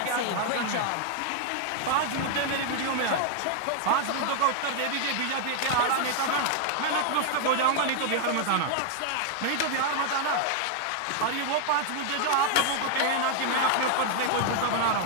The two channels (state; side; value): different; both; correlation 0.00